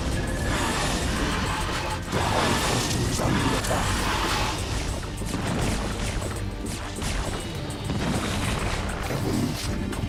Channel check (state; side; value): identical; both; correlation 1.00